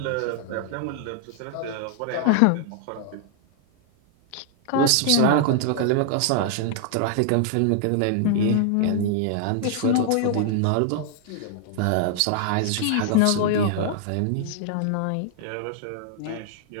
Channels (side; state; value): both; different; correlation 0.00